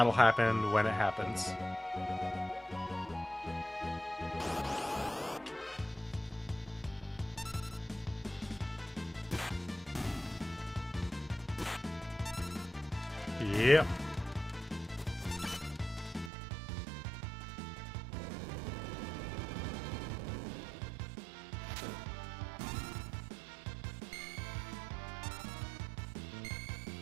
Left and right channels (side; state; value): left; drops out; at 16.3 s